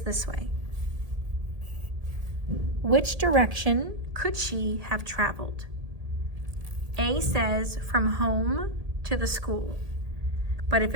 this way. Which direction could she have traveled? A says from home to the school. But if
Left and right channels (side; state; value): left; late; 1.7 ms